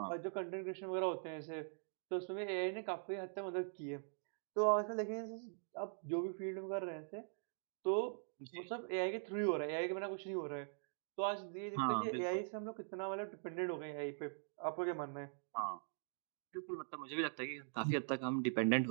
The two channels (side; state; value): left; silent; digital silence